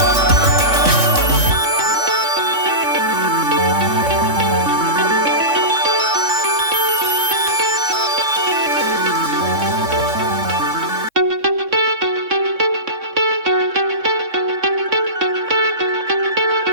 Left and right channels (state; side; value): late; left; 3.6 ms